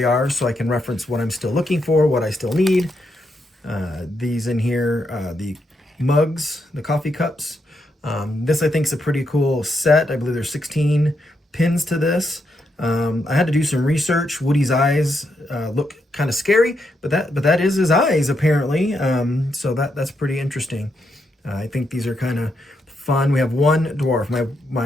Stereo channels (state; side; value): normal; both; correlation 0.80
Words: are so I can reference what I'm still looking for, what I still need. These in here, the mugs, the coffee cups. This I think is a pretty cool set. I believe there's 16 pins to this. I had to do some research. Woody's eyes look kind of scary, but that is his eyes apparently. So that's pretty interesting. I think these are kind of fun. We have one dwarf.